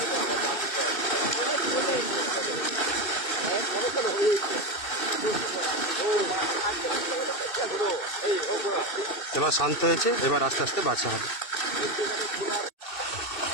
এবার শান্ত হয়েছে, এবার আস্তে আস্তে বাছা হবে।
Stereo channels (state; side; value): late; right; 2.5 ms